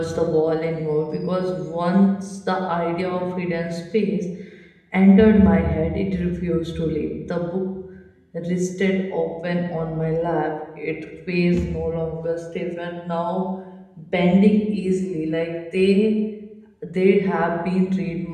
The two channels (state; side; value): identical; both; correlation 1.00